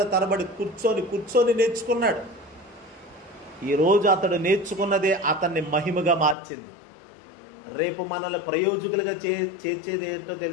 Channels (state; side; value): drops out; right; at 6.4 s